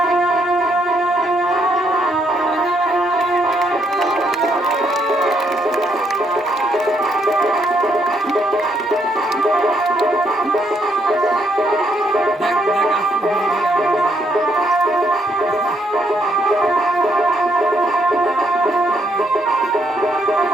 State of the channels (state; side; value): normal; both; correlation 0.73